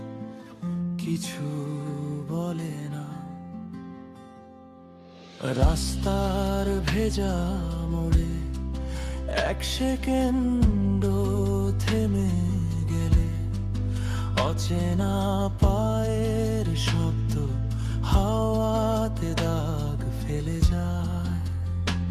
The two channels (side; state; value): both; identical; correlation 1.00